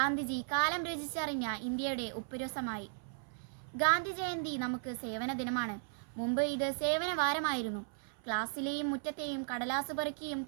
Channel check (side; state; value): left; silent; 54 dB below the other